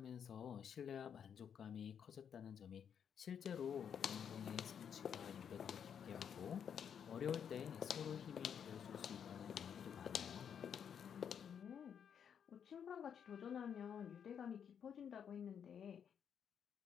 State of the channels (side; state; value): right; quieter; 7.9 dB